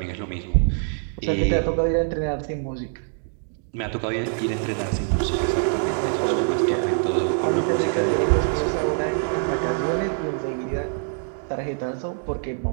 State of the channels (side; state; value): left; silent; 62 dB below the other